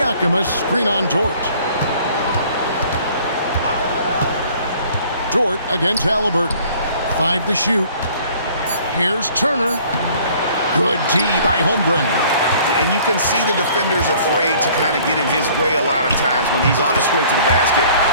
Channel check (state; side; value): inverted; both; correlation -0.54